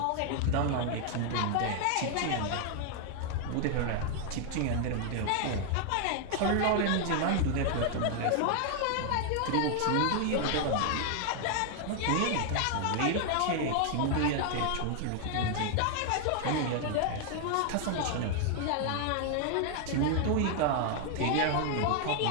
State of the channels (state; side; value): different; both; correlation 0.00